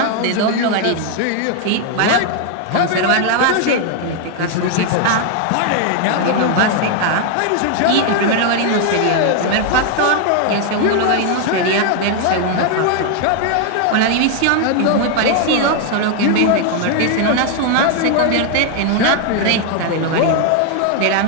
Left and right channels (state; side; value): different; both; correlation 0.00